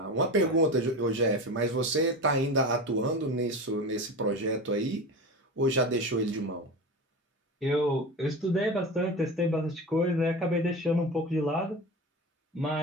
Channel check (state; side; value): normal; both; correlation 0.27